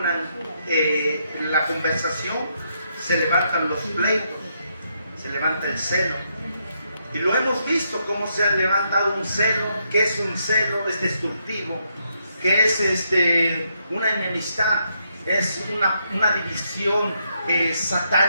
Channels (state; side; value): inverted; both; correlation -0.78